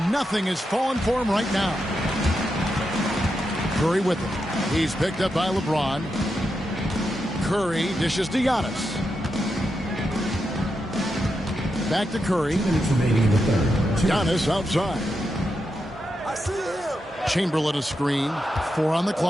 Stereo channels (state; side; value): normal; both; correlation 0.86